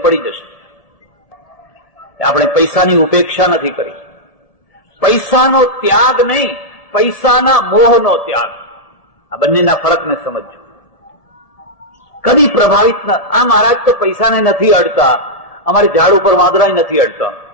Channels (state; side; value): late; right; 1.7 ms